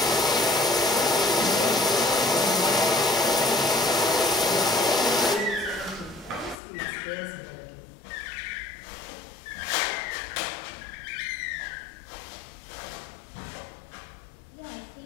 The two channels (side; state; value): right; drops out; at 6.6 s